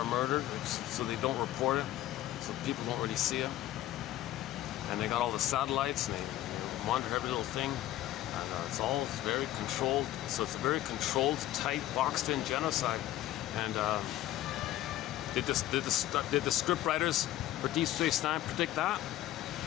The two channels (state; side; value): quieter; right; 14.1 dB